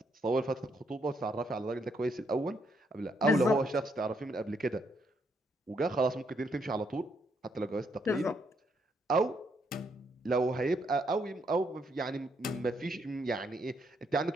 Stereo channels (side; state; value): both; normal; correlation 0.75